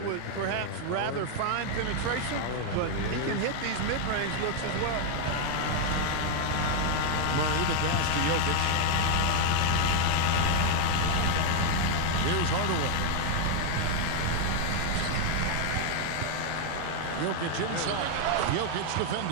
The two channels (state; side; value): different; both; correlation 0.00